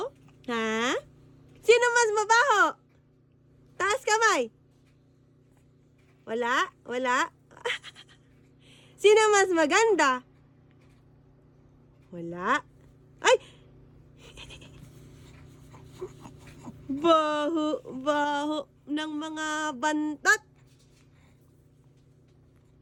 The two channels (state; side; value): identical; both; correlation 1.00